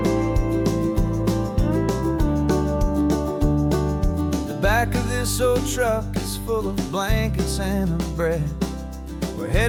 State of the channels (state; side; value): identical; both; correlation 1.00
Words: Back of this old truck is full of blankets and a bread. We're